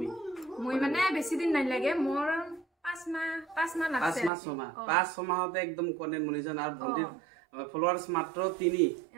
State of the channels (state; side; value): drops out; left; at 4.3 s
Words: মই মানে বেছি দিন নাই লাগে, মোৰ 5 মাহ লাগছে। 5 মাহতে একদম কন্টেন্ট মনিটাইজেশন। আৰ ভন্টিৰ ফলোৱাৰ্স মাত্ৰ 3K